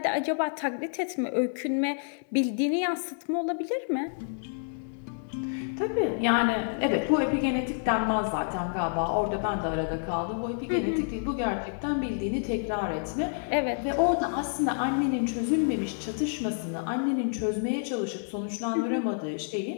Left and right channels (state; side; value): silent; right; digital silence